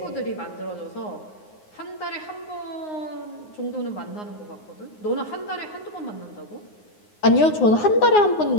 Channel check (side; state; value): right; late; 9.6 ms